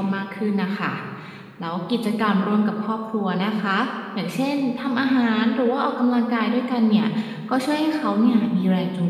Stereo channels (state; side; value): identical; both; correlation 1.00